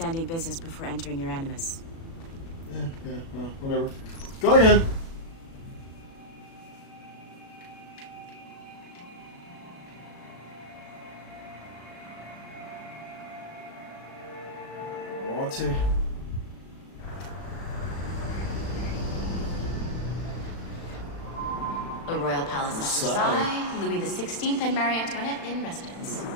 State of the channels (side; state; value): right; late; 36 ms